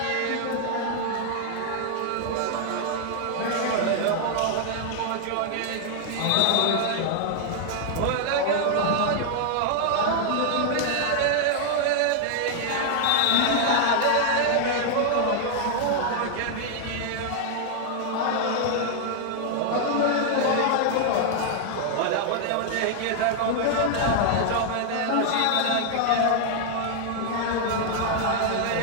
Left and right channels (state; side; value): different; both; correlation 0.00